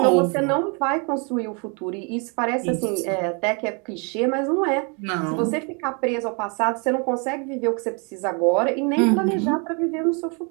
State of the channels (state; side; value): quieter; left; 34.7 dB